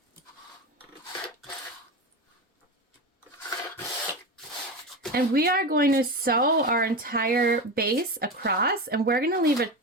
And we are going to sew our entire base across, and we're going to leave a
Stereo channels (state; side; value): normal; both; correlation 0.22